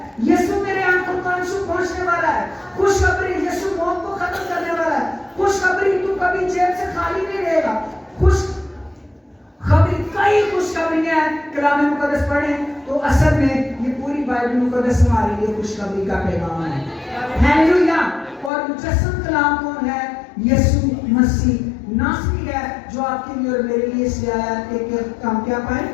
یسوع تیرے آنکھوں کو آنسو پہنچنے والا ہے. خوشخبری. یسوع موت کو ختم کرنے والا ہے. خوشخبری. تو کبھی جیب سے خالی نہیں رہے گا. خوشخبری. کئی خوشخبریاں ہیں, کلام مقدس پڑھیں تو اصل میں یہ پوری بائبل مقدس ہمارے لیے خوشخبری کا پیغام ہے. ہیلیلویا. اور مجسم کلام کون ہے؟ یسوع مسیح ناصری ہے جو آپ کے لیے اور میرے لیے اس لیے آیا کہ ہم کیا پائیں؟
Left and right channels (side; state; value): right; drops out; at 18.5 s